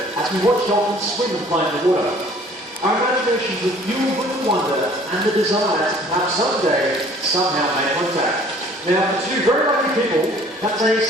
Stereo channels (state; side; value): normal; both; correlation 0.53